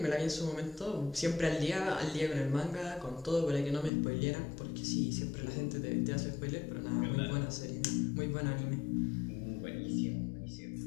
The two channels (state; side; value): drops out; right; at 3.9 s